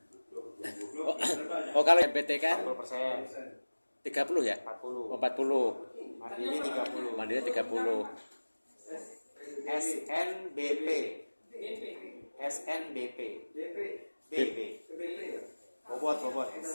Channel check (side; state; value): both; inverted; correlation -1.00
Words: Kalau MPT kan 40%, 30 ya? 40, 40. mandiri 30. Mandiri 30. SNBP, SNBP, BP, bobot.